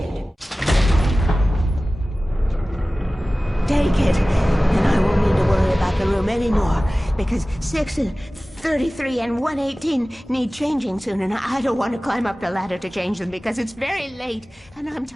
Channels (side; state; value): both; normal; correlation 0.97